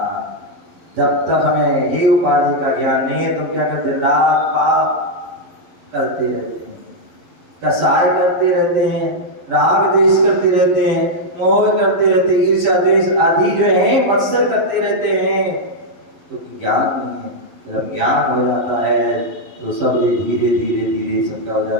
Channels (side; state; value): left; late; 11 ms